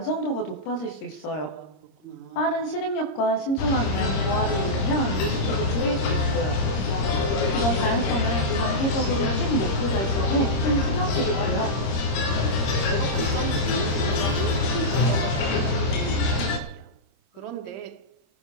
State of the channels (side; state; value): right; late; 26 ms